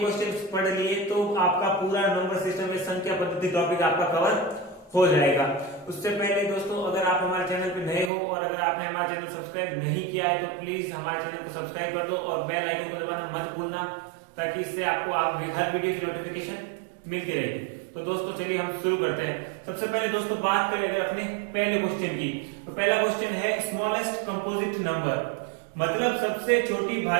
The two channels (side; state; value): left; drops out; at 8.1 s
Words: पढ़ लिए तो आपका पूरा नंबर सिस्टम में संख्या पद्धति टॉपिक आपका कवर हो जाएगा। उससे पहले दोस्तों अगर आप हमारे चैनल पे नए हो और अगर आपने हमारा चैनल सब्सक्राइब नहीं किया है तो प्लीज हमारे चैनल को सब्सक्राइब कर दो और बेल आइकन को दबाना मत भूलना, ताकि इससे आपको हर वीडियो की नोटिफिकेशन मिलती रहेगी। तो दोस्तों चलिए हम शुरू करते हैं। सबसे पहले दोस्तों बात करें अगर अपने पहले क्वेश्चन की, तो पहला क्वेश्चन है स्मॉलेस्ट कंपोजिट नंबर, मतलब सबसे छोटी